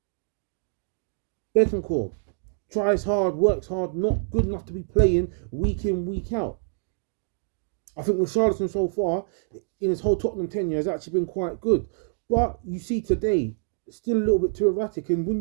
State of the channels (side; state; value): left; silent; digital silence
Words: Bentancur, tries hard, works hard, not good enough to be playing week in, week out. I think Richarlison so far, in his whole Tottenham tenure, has actually been quite good. But you see today, still a little bit too erratic. And when